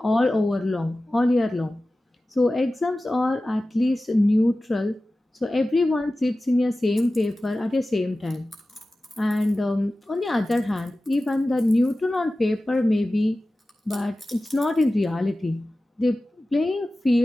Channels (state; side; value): normal; both; correlation 0.96